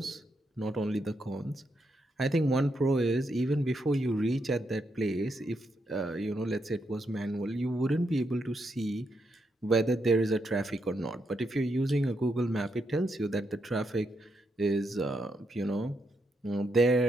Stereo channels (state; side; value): normal; both; correlation 0.80